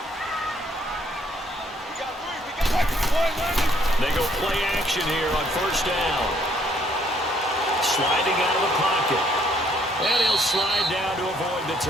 They go play action here on first down. Sliding out of the pocket. And he'll slide down to avoid the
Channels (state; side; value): normal; both; correlation 0.66